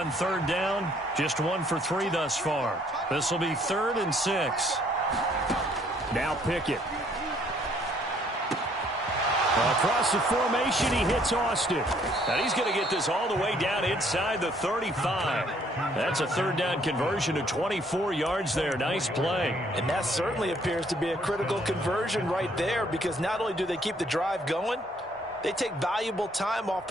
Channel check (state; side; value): normal; both; correlation 0.64